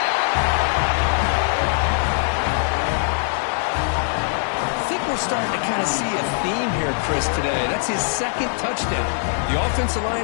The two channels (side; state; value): right; silent; 62 dB below the other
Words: I think we're starting to kind of see a theme here, Chris, today. That's his 2nd touchdown. The offensive